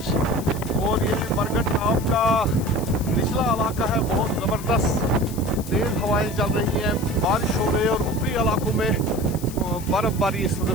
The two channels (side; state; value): left; noise; hiss, 15 dB below the sound